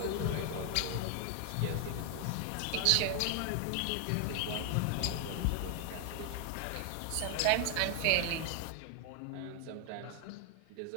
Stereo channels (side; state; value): both; different; correlation 0.00